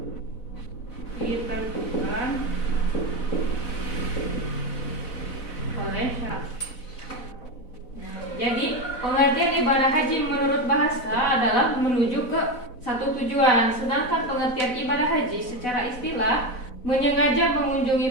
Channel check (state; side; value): late; right; 4.0 ms